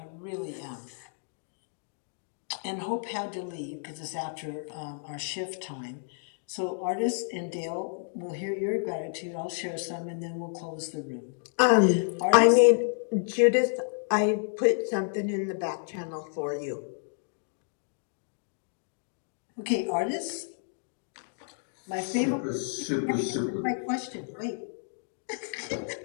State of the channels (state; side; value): silent; right; digital silence